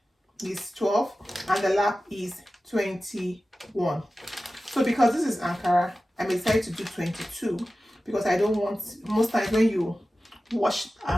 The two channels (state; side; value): normal; both; correlation 0.95